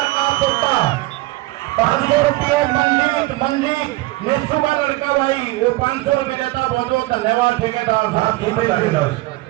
का पुट्टा 500 रुपये मंजीत ने सुबह लड़का भाई वो 500 रुपये देता। बहुत बहुत धन्यवाद ठेकेदार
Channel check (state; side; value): quieter; left; 19.9 dB